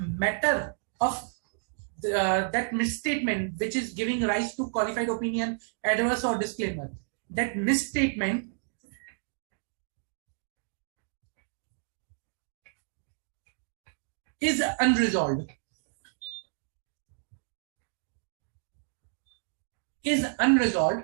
of that misstatement which is giving rise to qualified opinion, adverse or disclaimer, that misstatement is unresolved.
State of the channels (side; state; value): left; silent; digital silence